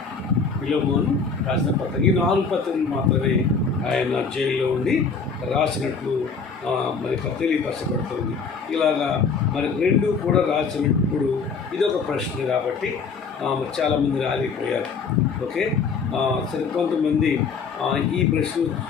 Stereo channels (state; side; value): quieter; right; 5.2 dB